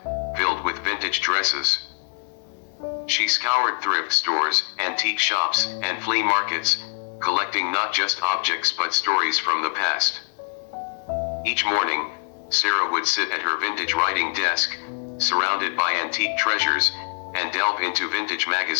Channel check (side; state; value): right; silent; digital silence